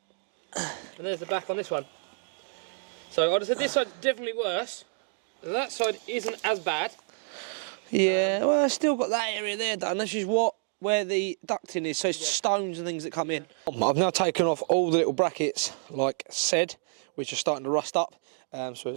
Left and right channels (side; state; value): left; silent; digital silence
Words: And there's the back on this one. So I'd have said this side's definitely worse. That side isn't as bad. Yeah, well, I've still got that area there done. This is where the ducting is, so it's stones and things that come in. I've now taken off all the little brackets, like said, which are starting to rust up. So